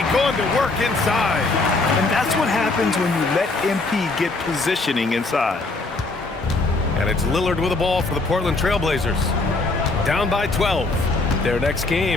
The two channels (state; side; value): quieter; right; 3.4 dB